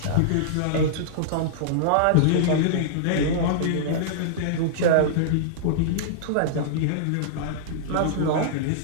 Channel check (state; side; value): different; both; correlation -0.02